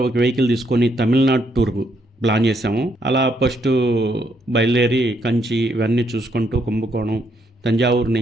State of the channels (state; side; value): normal; both; correlation 0.74